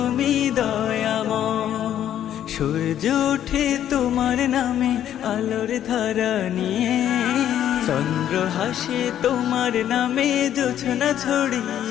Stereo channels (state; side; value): quieter; right; 10.8 dB